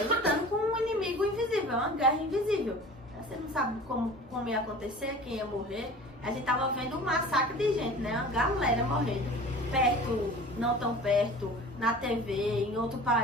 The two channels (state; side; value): normal; both; correlation 0.41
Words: Lutando com um inimigo invisível, uma guerra invisível. Você não sabe como ia acontecer, quem ia morrer. A gente tava vendo um massacre de gente, né? Uma galera morrendo. Perto, não tão perto, na TV, em outro